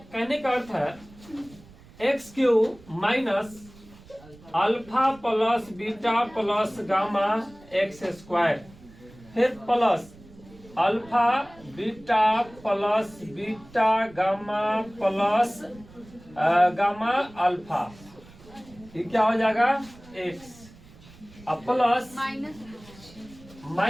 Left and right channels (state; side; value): noise; right; rumble, 22 dB below the sound